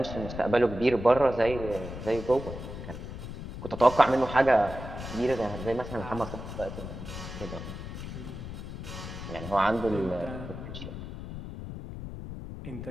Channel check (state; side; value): noise; left; rumble, 9 dB below the sound